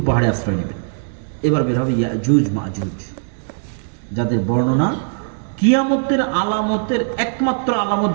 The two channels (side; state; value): left; silent; digital silence